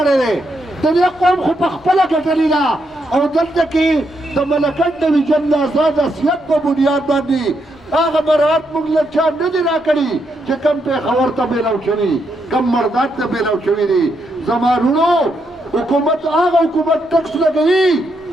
دی. د دې قوم خو په خپله ګټلې ده او دلته کې د ملکن ډویژن د آزاد حیثیت په بنیاد باندې هغه مراعات موږ له چا نه دي راکړي چې کم پېښور ته بیلو شوي، کم مرداد ته بیلو شوي دي. زما وروڼو حکومت هغه حکومت ټکس لګوي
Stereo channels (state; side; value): normal; both; correlation 0.79